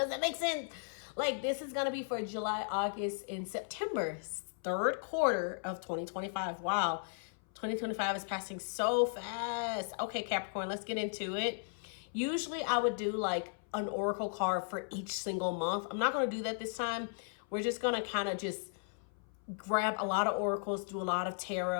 that make sense? Like, this is going to be for July, August, and September, third quarter of 2025. Wow. 2025 is passing so fast. Okay, Capricorn, let's get into it. Usually I would do like an oracle card for each single month. I'm not going to do that this time. We're just going to kind of just grab a lot of oracles, do a lot of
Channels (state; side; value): silent; right; 54 dB below the other